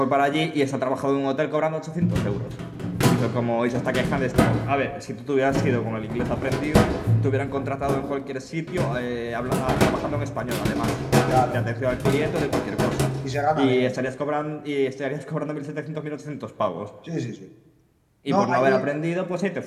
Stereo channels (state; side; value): identical; both; correlation 1.00